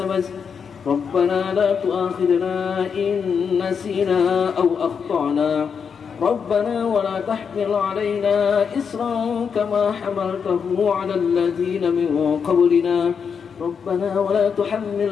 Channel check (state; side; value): quieter; right; 6.5 dB